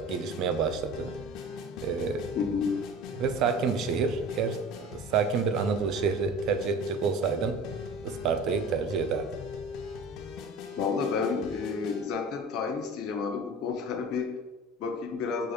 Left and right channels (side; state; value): both; normal; correlation 0.39